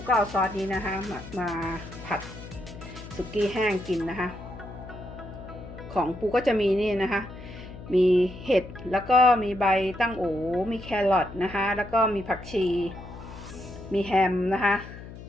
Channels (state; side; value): noise; left; hum, 14 dB below the sound